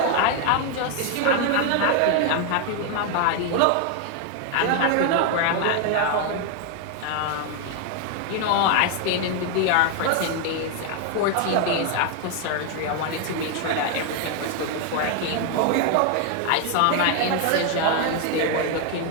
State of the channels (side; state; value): both; different; correlation 0.01